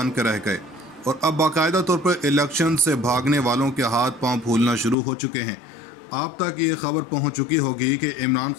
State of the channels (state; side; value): drops out; right; at 5.0 s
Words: कर रह गए और अब बाकायदा तौर पर इलेक्शन से भागने वालों के हाथ पांव फूलना शुरू हो चुके हैं। आप तक ये खबर पहुंच चुकी होगी कि इमरान